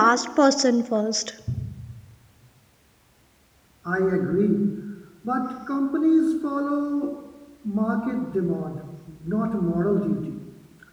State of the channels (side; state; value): both; identical; correlation 1.00